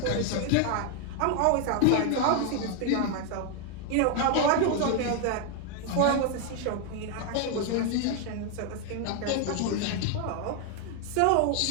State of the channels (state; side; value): different; both; correlation 0.01